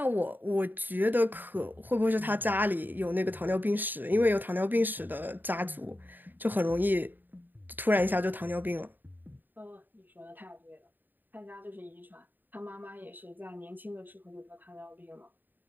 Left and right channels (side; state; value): left; late; 0.090 ms